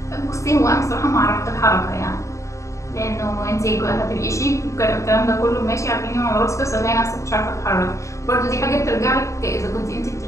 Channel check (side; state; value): right; late; 0.15 ms